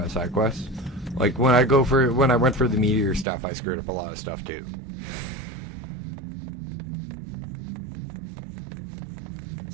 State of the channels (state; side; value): drops out; left; at 3.2 s